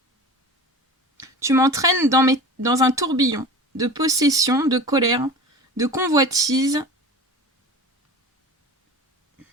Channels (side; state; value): both; normal; correlation 0.35